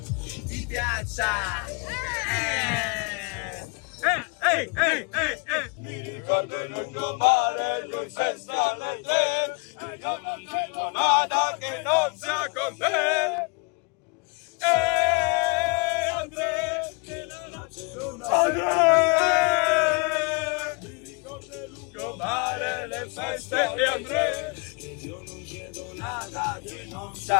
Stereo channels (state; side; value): quieter; right; 31.7 dB